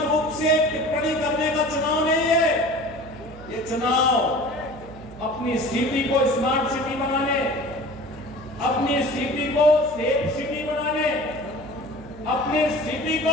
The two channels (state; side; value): noise; right; hum, 17 dB below the sound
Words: रूप से टिप्पणी करने का चुनाव नहीं है। ये चुनाव अपनी सिटी को स्मार्ट सिटी बनाने, अपनी सिटी को सेफ सिटी बनाने, अपनी सिटी